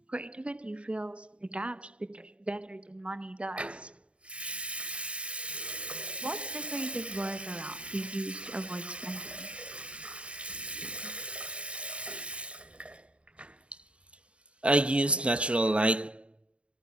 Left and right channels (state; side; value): late; left; 0.060 ms